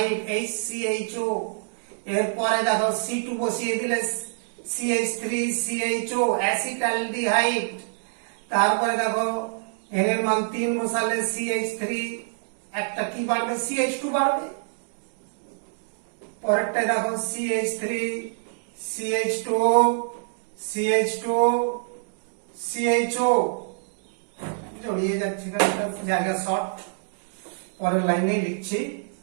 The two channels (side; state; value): left; silent; digital silence